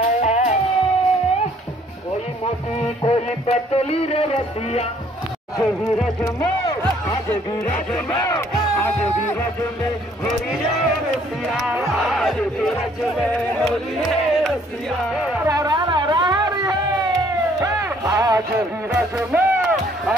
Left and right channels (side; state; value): both; normal; correlation 0.62